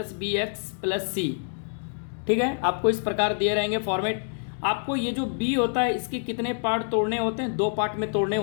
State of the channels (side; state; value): right; silent; digital silence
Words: bx + c, ठीक है। आपको इस प्रकार दिए रहेंगे फॉर्मेट। आपको ये जो b होता है इसके कितने पार्ट तोड़ने होते हैं? 2 पार्ट में तोड़ने